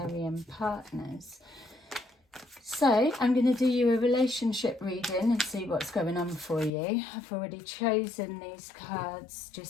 partners. So I'm going to do you a relationship reading and see what's going on for you. I've already chosen these cards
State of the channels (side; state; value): right; drops out; at 6.7 s